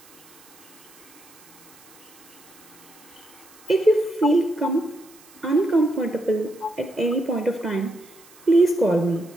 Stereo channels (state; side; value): noise; right; hiss, 24 dB below the sound